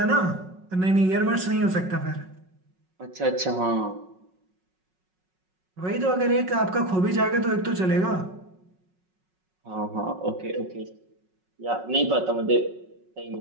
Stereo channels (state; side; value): late; left; 5.4 ms